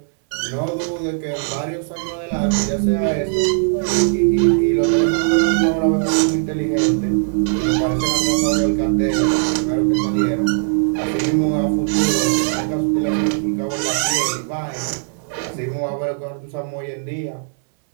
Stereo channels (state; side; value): silent; left; digital silence